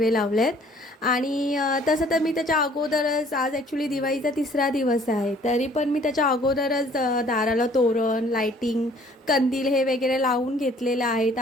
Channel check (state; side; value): normal; both; correlation 0.57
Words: लावलेत. आणि तसं तर मी त्याच्या अगोदरच, आज ॲक्च्युली दिवाळीचा 3रा दिवस आहे, तरी पण मी त्याच्या अगोदरच दाराला तोरण, लाईटिंग, कंदील हे वगैरे लावून घेतलेलं आहे. तर